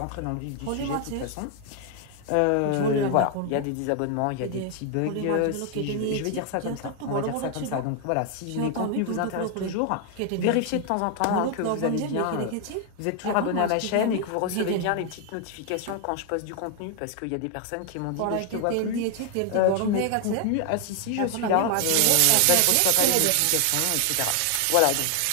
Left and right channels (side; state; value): both; different; correlation 0.00